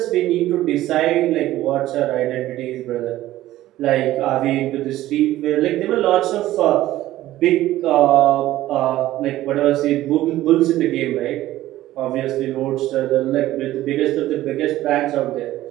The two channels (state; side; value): quieter; left; 15.0 dB